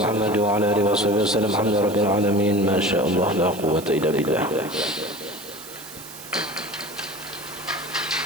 محمد وعلى آله وصحبه وسلم. الحمد لله رب العالمين. ما شاء الله لا قوة إلا بالله.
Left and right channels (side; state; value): right; noise; hiss, 15 dB below the sound